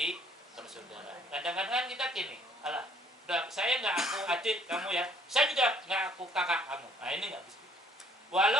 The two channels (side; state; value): both; normal; correlation 0.61